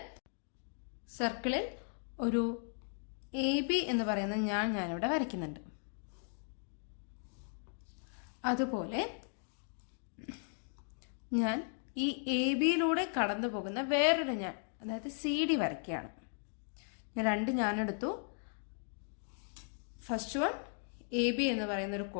സർക്കിളിൽ ഒരു AB എന്ന് പറയുന്ന ഞാനിവിടെ വരയ്ക്കുന്നുണ്ട്. അതുപോലെ ഞാൻ ഈ ABയിലൂടെ കടന്നു പോകുന്ന വേറൊരു ഞാൻ, അതായത് CD വരയ്ക്കുകയാണ്. ഞാൻ 2 ഞാൻ എടുത്തു. ഫസ്റ്റ് വൺ AB എന്ന് പറയുന്ന ഒരു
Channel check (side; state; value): right; silent; 53 dB below the other